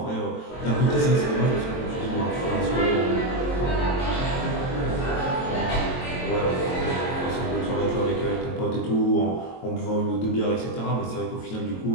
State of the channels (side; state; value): right; late; 22 ms